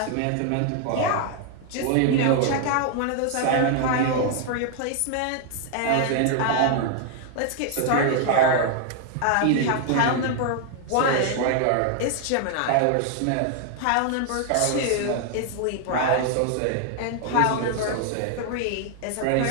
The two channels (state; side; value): different; both; correlation 0.00